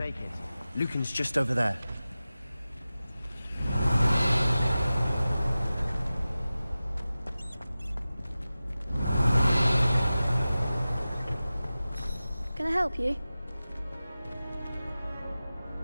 it. Lucan's just over there. Can I help you?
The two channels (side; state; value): both; inverted; correlation -0.95